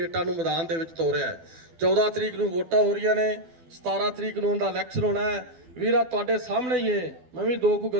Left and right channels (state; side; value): late; left; 12 ms